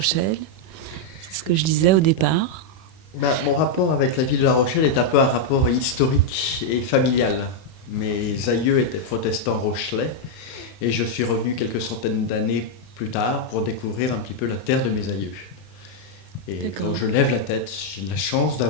C'est ce que je disais au départ. Mon rapport avec la ville de La Rochelle est un peu un rapport historique et familial. Mes aïeux étaient protestants rochelais et je suis revenu quelques centaines d'années plus tard pour découvrir un petit peu la terre de mes aïeux. Et quand je lève la tête, j'ai la chance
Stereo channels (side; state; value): right; late; 31 ms